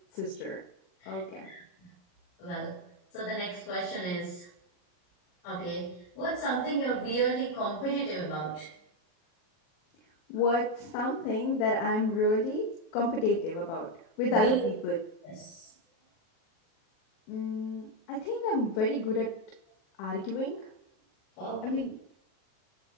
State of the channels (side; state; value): right; late; 40 ms